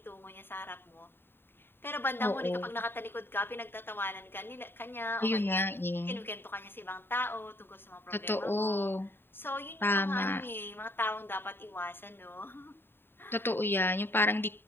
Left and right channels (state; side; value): late; right; 0.10 ms